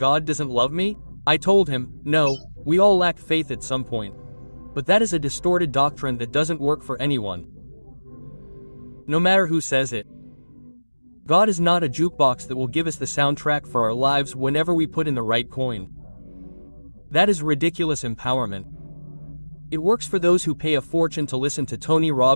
doesn't love me? I told him, no, we all lack faith at some point. But that is a distorted doctrine that doesn't work for anyone. No matter who says it. God is not a jukebox that will give us the soundtrack for our lives whenever we put in the right coin. That is ridiculous empowerment. It works for those who pay a fortune to listen to Tony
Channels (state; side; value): inverted; both; correlation -1.00